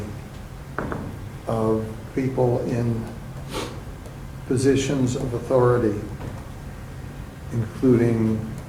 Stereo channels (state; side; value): identical; both; correlation 1.00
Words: of people in positions of authority, including